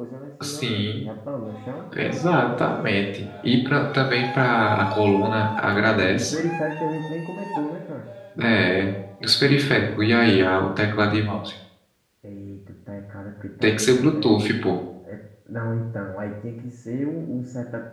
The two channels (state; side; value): identical; both; correlation 1.00